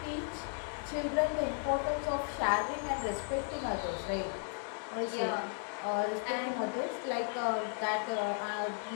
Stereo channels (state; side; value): silent; right; 54 dB below the other